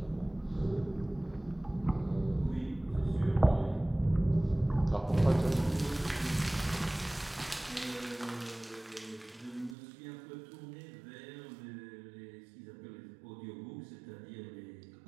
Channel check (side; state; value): left; drops out; at 9.8 s